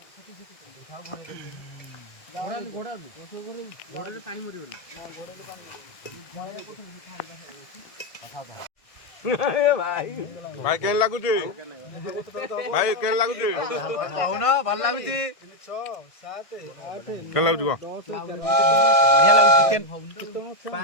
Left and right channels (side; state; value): right; late; 1.6 ms